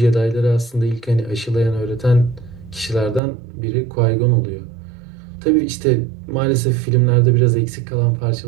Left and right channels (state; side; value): drops out; left; at 3.2 s